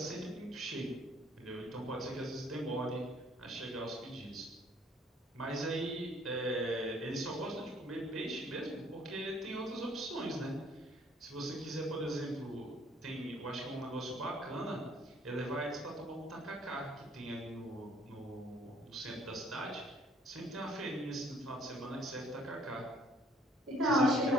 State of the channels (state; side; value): normal; both; correlation 0.60